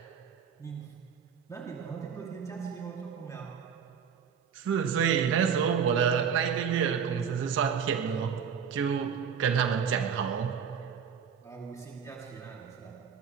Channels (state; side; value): quieter; left; 7.2 dB